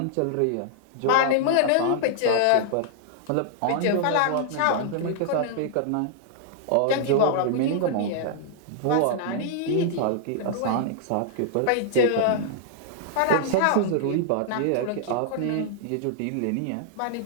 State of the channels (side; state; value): both; different; correlation -0.01